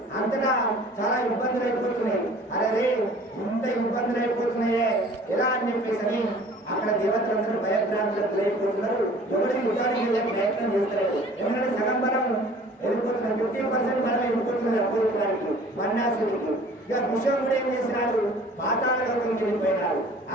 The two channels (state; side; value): normal; both; correlation 0.49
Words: అంతటా చాలా ఇబ్బందులు అయిపోతున్నాయి. అరే ఇంత ఇబ్బందులు అయిపోతున్నాయే ఎలా అని చెప్పేసి అక్కడ దేవతలందరూ భయభ్రాంతులకు అయిపోతున్నారు. ఎవరికి యుద్ధానికి వెళ్ళే ప్రయత్నం చేస్తారు. ఎందుకంటే సగం బలం వెళ్ళిపోతున్నారు, 50% బలం వెళ్ళిపోతున్నారు అపోజిటానికి బండాసుడికి. ఇక విషయంలో ఏం చేసినాడు? పాతాళ లోకంకి వెళ్ళిపోయినాడు.